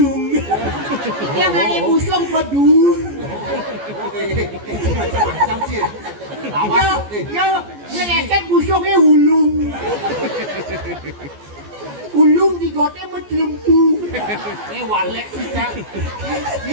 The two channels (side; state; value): left; late; 14 ms